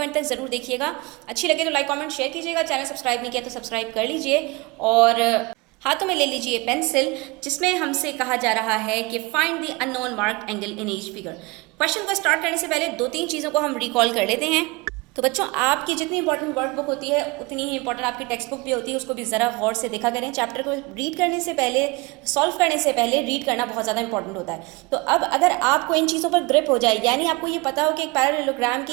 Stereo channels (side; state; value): left; quieter; 25.3 dB